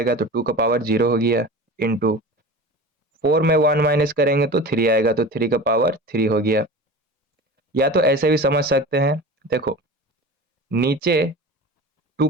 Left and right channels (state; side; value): normal; both; correlation 0.34